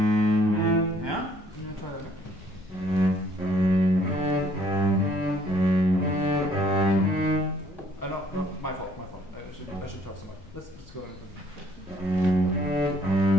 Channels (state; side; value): noise; left; rumble, 22 dB below the sound